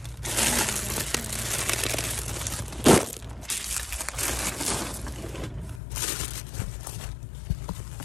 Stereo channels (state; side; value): drops out; right; at 5.8 s